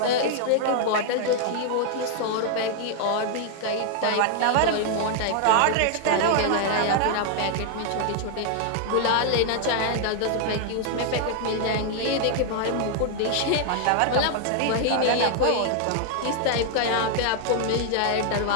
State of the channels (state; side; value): different; both; correlation 0.00